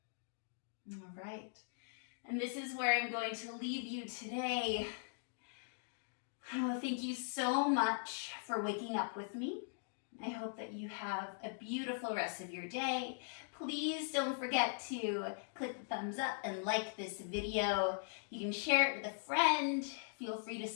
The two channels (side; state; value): right; silent; digital silence